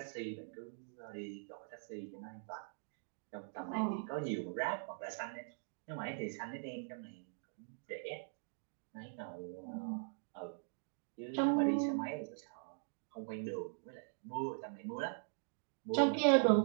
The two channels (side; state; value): left; silent; digital silence